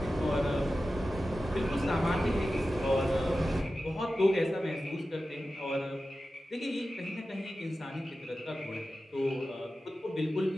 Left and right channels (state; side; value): normal; both; correlation 0.94